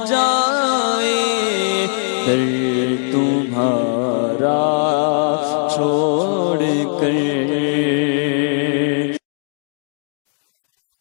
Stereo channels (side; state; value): right; silent; digital silence